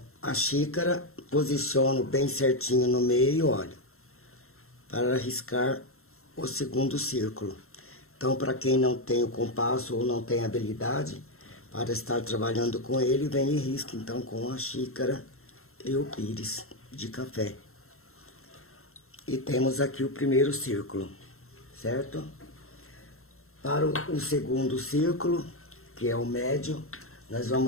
a xícara, posiciono bem certinho no meio, olha, para riscar o segundo círculo. Então, para quem não tem o compasso ou não tem habilidade para estar trabalhando com ele, vem e risca então com a xícara e o pires de café. E temos aqui o primeiro círculo, certo? Para o segundo círculo, que é o médio, nós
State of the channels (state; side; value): late; right; 0.62 ms